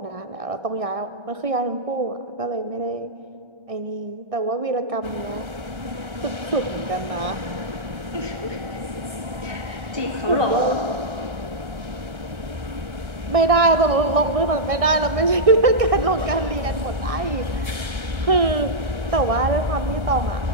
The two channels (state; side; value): late; left; 1.3 ms